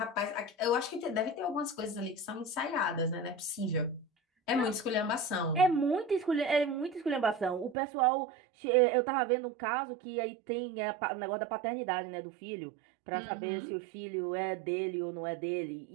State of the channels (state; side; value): drops out; left; at 7.8 s